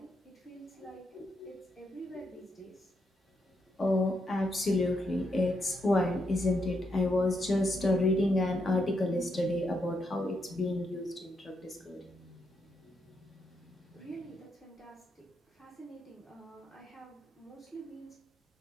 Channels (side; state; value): both; normal; correlation 0.80